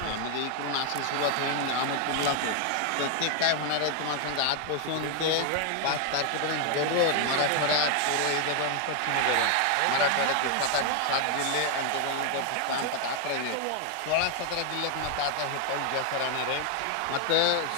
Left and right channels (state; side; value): different; both; correlation 0.00